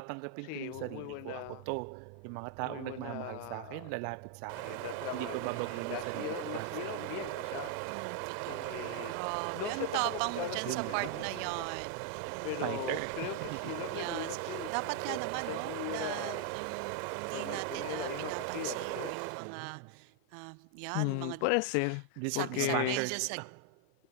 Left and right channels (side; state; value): both; different; correlation 0.00